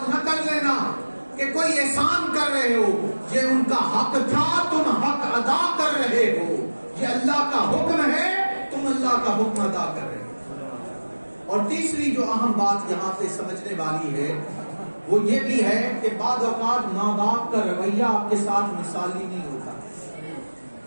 نہ کر لینا کہ کوئی احسان کر رہے ہو. یہ ان کا حق تھا، تم حق ادا کر رہے ہو. یہ اللہ کا حکم ہے، تم اللہ کا حکم ادا کر رہے ہو. اور تیسری جو اہم بات یہاں پہ سمجھنے والی ہے وہ یہ بھی ہے کہ بعض اوقات ماں باپ کا رویہ آپ کے ساتھ مثالی نہیں ہوتا.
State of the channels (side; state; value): both; inverted; correlation -1.00